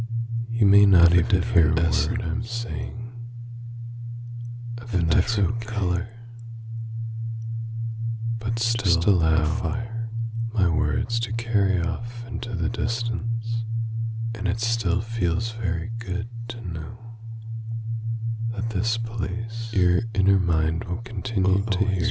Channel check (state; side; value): identical; both; correlation 1.00